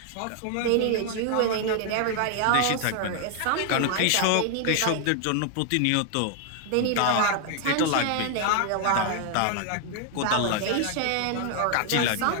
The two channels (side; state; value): both; different; correlation 0.00